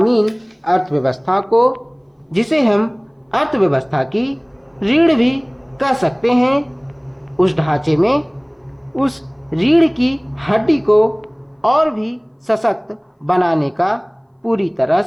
अर्थव्यवस्था को, जिसे हम अर्थव्यवस्था की रीढ़ भी कह सकते हैं, उस ढांचे में उस रीढ़ की हड्डी को और भी सशक्त बनाने का पूरी तरह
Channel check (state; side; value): identical; both; correlation 1.00